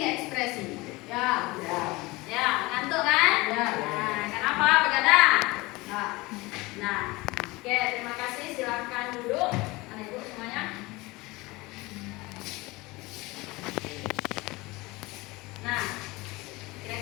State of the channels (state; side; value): quieter; right; 22.3 dB